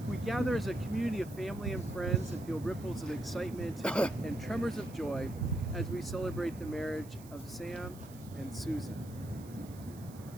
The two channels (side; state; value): right; noise; hiss, 21 dB below the sound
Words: We gather as a community of family and friends and feel ripples of excitement and tremors of joy as we celebrate the marriage of Sam and Susan.